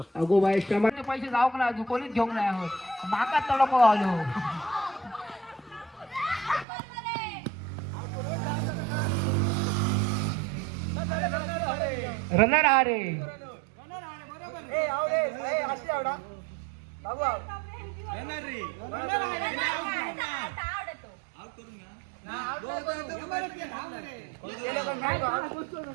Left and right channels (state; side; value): drops out; left; at 6.7 s